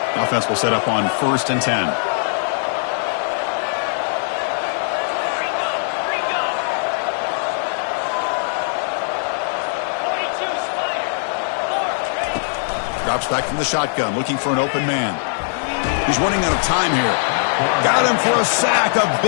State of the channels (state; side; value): silent; right; 65 dB below the other